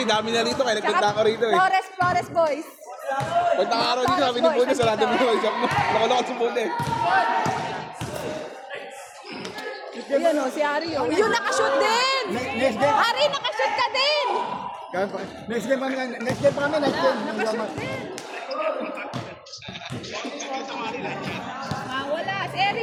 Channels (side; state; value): both; identical; correlation 1.00